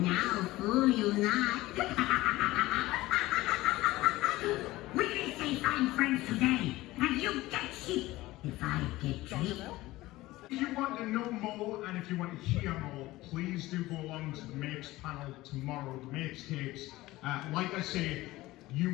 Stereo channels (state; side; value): quieter; right; 18.2 dB